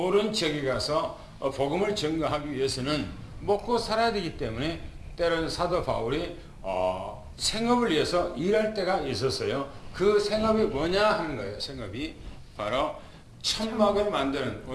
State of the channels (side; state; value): both; identical; correlation 1.00